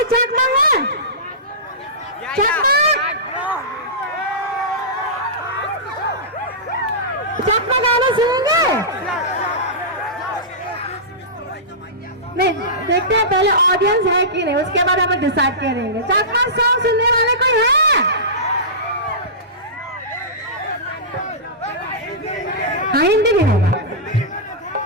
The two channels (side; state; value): both; normal; correlation -0.18